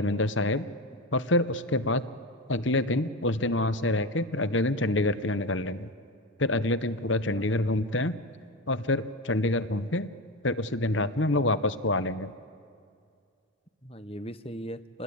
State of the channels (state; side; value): normal; both; correlation 0.20